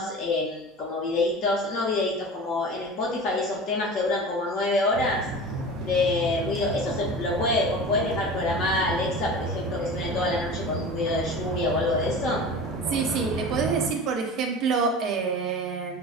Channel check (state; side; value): normal; both; correlation 0.34